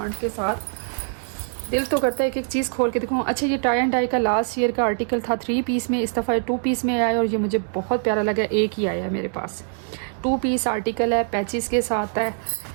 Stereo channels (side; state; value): left; silent; digital silence